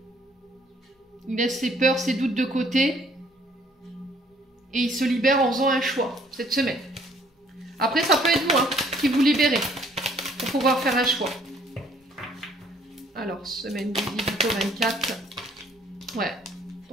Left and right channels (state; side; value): normal; both; correlation 0.61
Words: Il laisse ses peurs, ses doutes de côté. Et il se libère en faisant un choix, cette semaine. Après, ça peut être vous, hein, qui vous libérez. Pour pouvoir faire un choix. Alors, semaine du 18 au 24. Ouais.